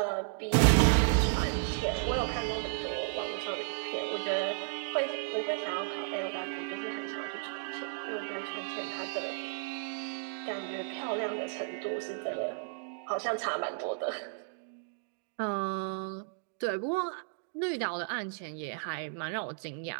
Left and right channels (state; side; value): silent; left; digital silence